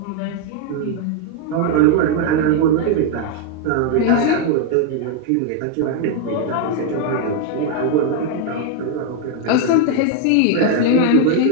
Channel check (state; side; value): different; both; correlation 0.01